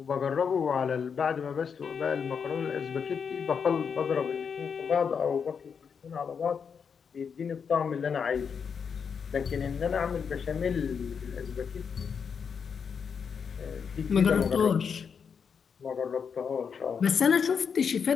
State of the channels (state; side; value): quieter; right; 6.5 dB